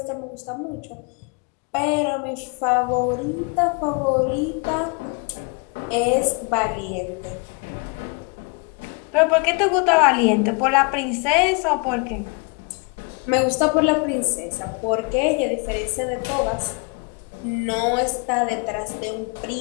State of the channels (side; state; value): right; quieter; 33.0 dB